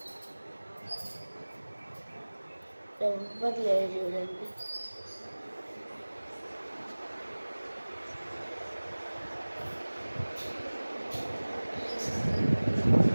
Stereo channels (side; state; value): both; inverted; correlation -1.00